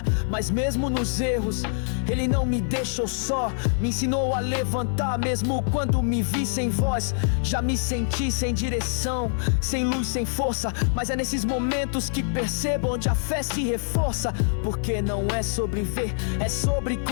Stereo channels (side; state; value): right; silent; 62 dB below the other